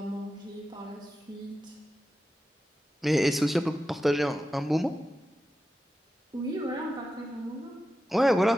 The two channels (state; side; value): normal; both; correlation 0.92